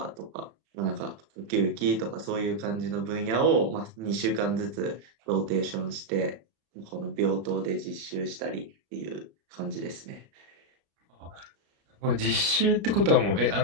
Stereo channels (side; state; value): left; late; 30 ms